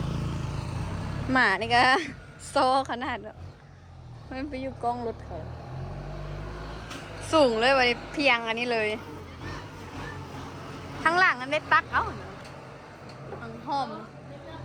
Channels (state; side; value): identical; both; correlation 1.00